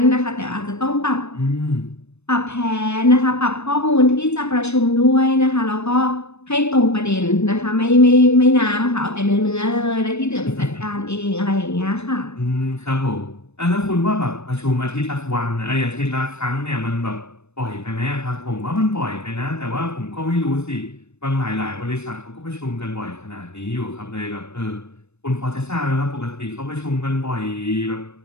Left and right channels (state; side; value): late; right; 0.81 ms